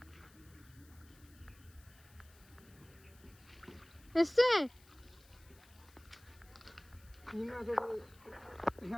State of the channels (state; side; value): noise; left; hiss, 25 dB below the sound